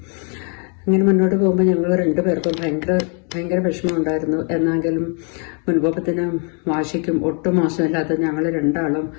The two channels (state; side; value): quieter; right; 39.5 dB